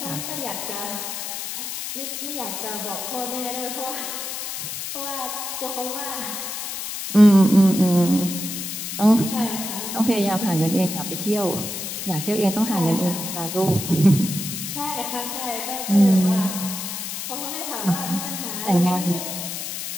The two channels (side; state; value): left; noise; hiss, 6 dB below the sound